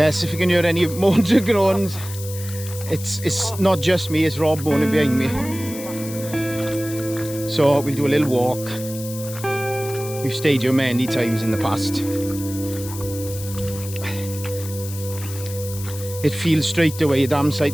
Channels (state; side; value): noise; left; hiss, 12 dB below the sound